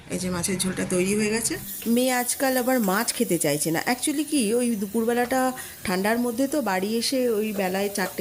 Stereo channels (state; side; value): identical; both; correlation 1.00